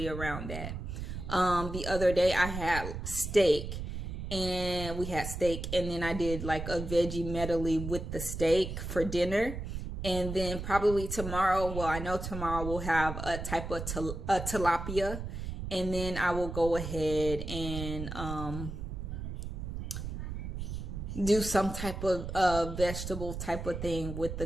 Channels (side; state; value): right; noise; rumble, 6 dB below the sound